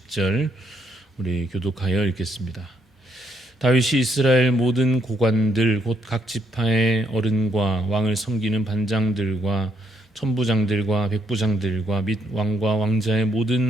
우리 교독하여 읽겠습니다. 다윗이 이스라엘 모든 고관들 곧 각 지파의 어른과 왕을 섬기는 반장들과 천부장들과 백부장들과 및 왕과 왕자의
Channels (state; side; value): normal; both; correlation 0.75